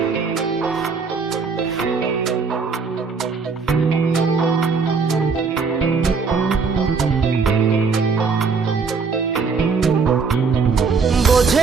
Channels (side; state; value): left; quieter; 5.0 dB